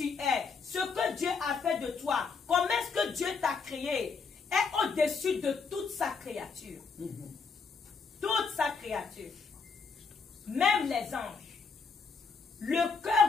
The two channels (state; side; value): quieter; right; 5.1 dB